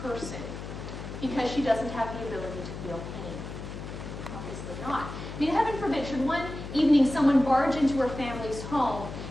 because she doesn't have the ability to feel pain? Obviously not. I mean, heaven forbid, should one evening someone barge into her family's home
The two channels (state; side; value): noise; left; hum, 9 dB below the sound